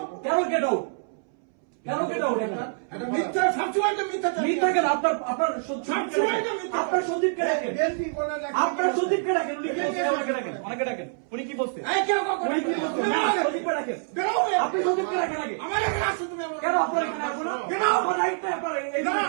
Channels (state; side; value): silent; left; 61 dB below the other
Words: কেন গেট আউট? কেন গেট আউট? এটা মিথ্যা, সবসময় তো মিথ্যা। মিথ্যা কেন? আপনার সন্দীপকে ডাকেন, আপনার সন্দীপকে ডাকেন। উনি কি বলছে? আমাকে ডাকেন, অনেকে ডাকেন। উনি কি বলছে? উনি কি বলছে? না, সন্দীপকে ডাকেন। আপনি সন্দীপকে ডাকেন আগে। আমার এখানে আসছো তুমি? কেন আপনার এখানে আসবো না? কেন আমার রাইট নাই? আপনার এই